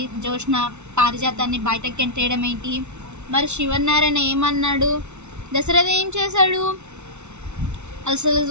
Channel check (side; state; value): left; late; 0.82 ms